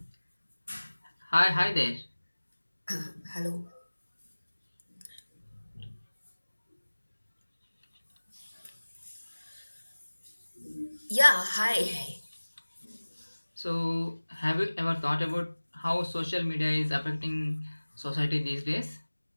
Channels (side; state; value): both; inverted; correlation -1.00